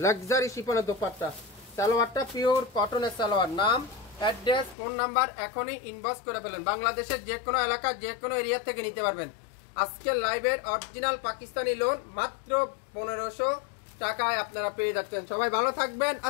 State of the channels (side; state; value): right; drops out; at 4.8 s